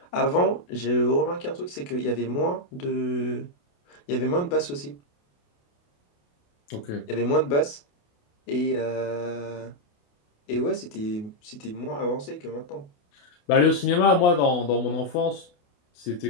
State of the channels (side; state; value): right; late; 28 ms